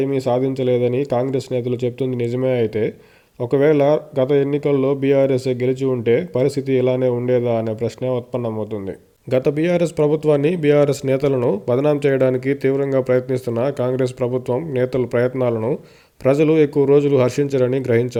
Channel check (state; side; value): identical; both; correlation 1.00